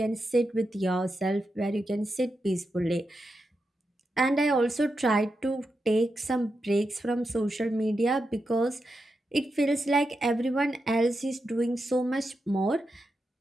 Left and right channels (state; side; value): normal; both; correlation 0.87